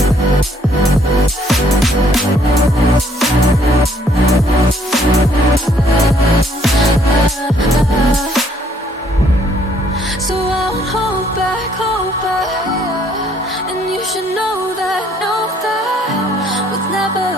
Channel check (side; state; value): both; normal; correlation 0.65